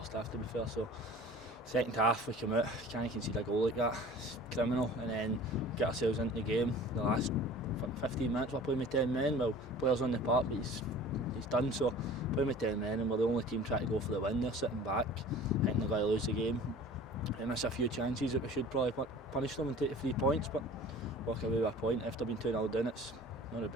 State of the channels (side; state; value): both; normal; correlation 0.43